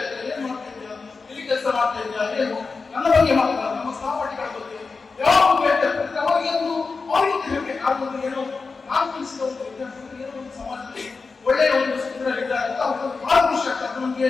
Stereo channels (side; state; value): right; quieter; 4.4 dB